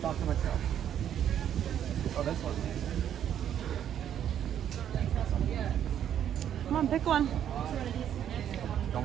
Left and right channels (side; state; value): left; quieter; 9.9 dB